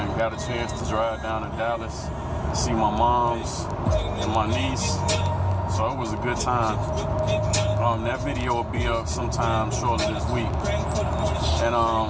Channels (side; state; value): both; identical; correlation 1.00